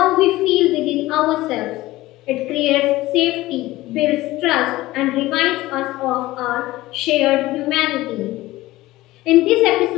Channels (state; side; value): quieter; right; 17.8 dB